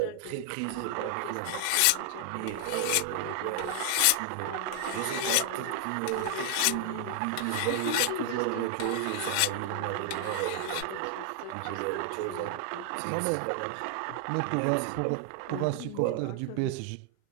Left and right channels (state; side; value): different; both; correlation 0.00